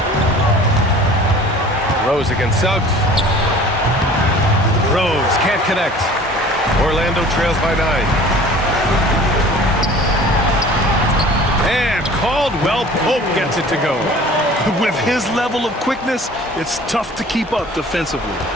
Rose against Suggs. Rose can't connect. Orlando trails by 9. And Caldwell Pope gets it to go. With his level of quickness, it's tough to keep up defensively.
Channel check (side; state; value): both; normal; correlation 0.46